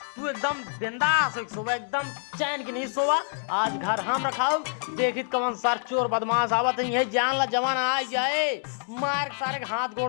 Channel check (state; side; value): silent; right; digital silence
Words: तू एकदम बिंदास सोवा एकदम चैन की नहीं सोवा। आज घर हम रखाओ देखित कौन सार चोर बदमाश आवत नहीं है जान ला जवान आ जाए मार सारे हाथ